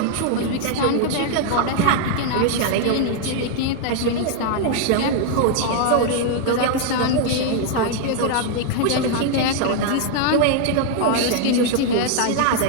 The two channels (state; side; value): different; both; correlation 0.00